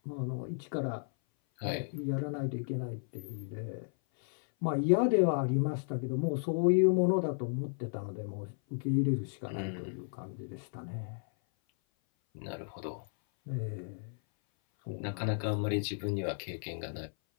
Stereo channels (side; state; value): right; silent; 55 dB below the other